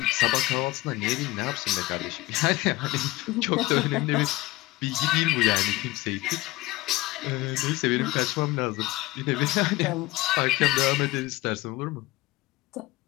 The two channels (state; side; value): quieter; right; 19.2 dB